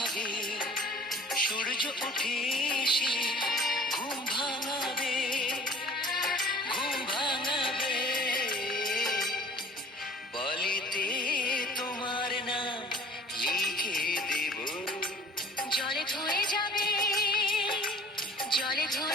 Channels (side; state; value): both; normal; correlation 0.48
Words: সূর্য উঠে এসে ঘুম ভাঙাবে, ঘুম ভাঙাবে। বলিতে তোমার নাম লিখে দেব, জলে ধুয়ে যাবে, জলে